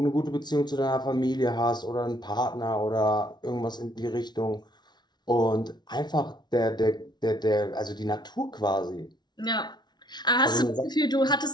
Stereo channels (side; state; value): right; late; 0.20 ms